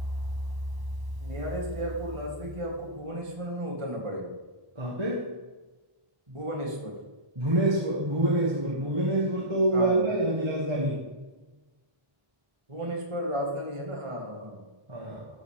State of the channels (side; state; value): left; late; 1.0 ms